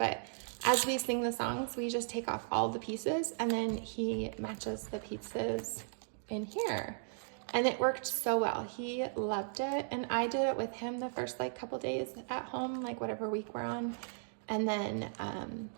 as we sing the songs, we just take off all the pieces and then he matches the pieces in here. And it worked so well. He loved it. And I did it with him the first like couple days at home, like whatever week we're on. And then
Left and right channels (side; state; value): left; silent; digital silence